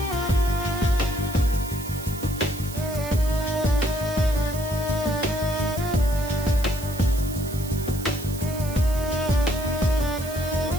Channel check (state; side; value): noise; right; hiss, 13 dB below the sound